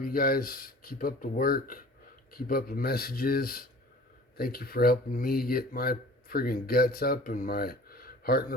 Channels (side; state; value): both; normal; correlation 0.45